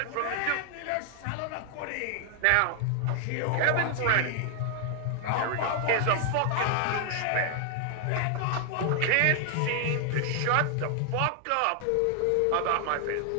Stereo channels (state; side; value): different; both; correlation 0.00